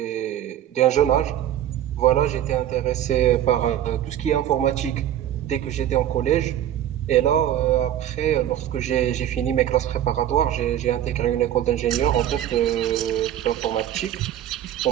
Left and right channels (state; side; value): quieter; left; 11.3 dB